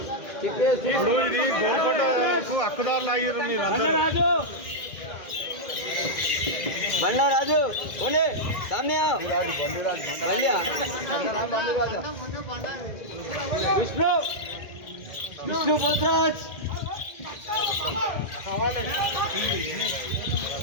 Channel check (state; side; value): late; right; 2.1 ms